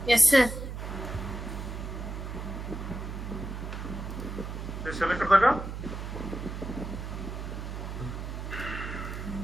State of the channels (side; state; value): right; noise; hum, 6 dB below the sound